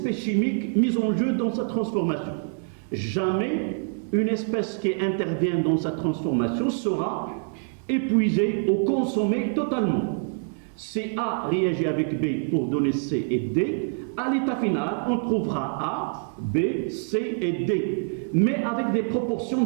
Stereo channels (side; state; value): left; silent; 61 dB below the other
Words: chimiques mises en jeu dans sa transformation. Jamais une espèce qui intervient dans sa transformation sera épuisée ou consommée totalement. Si A réagit avec B pour donner C et D, à l'état final, on trouvera A, B, C et D, mais avec des proportions